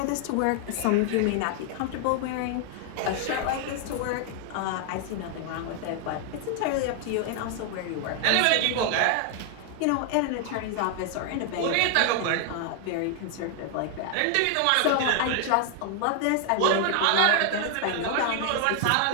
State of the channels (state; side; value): different; both; correlation 0.00